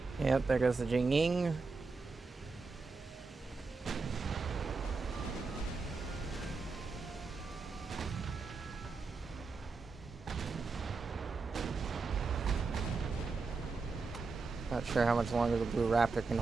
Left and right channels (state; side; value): quieter; left; 4.3 dB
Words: Yep, there goes the Jingying. Not sure how much longer the Blue Raptor can